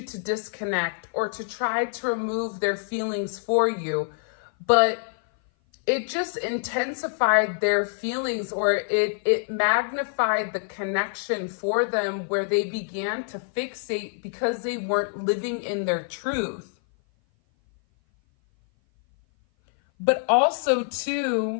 to disconnect, or to try to remove their feelings for you. But it just intensified their feelings, or it magnified the connection for them, where they began to fixate because they weren't living in their truth. But also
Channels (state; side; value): silent; right; 56 dB below the other